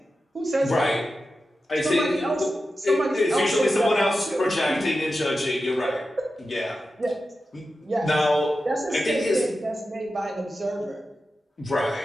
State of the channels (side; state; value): both; normal; correlation 0.91